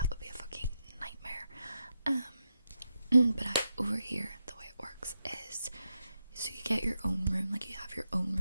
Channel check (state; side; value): inverted; both; correlation -0.85